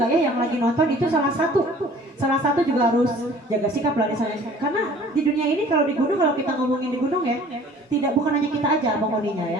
ya yang lagi nonton itu salah satu juga harus jaga sikap lah di sana, karena di dunia ini kalau di gunung, kalau kita ngomongin di gunung ya, bukan hanya kita aja penghuninya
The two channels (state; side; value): normal; both; correlation 0.50